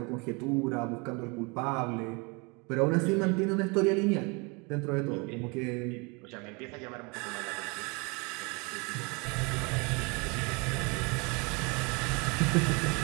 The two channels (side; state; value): left; quieter; 29.7 dB